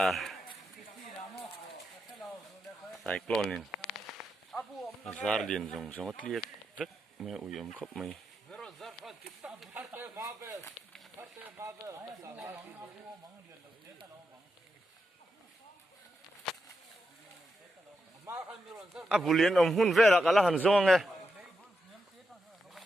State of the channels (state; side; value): normal; both; correlation 0.85